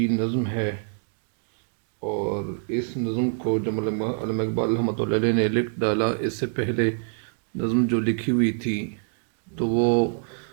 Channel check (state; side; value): silent; left; digital silence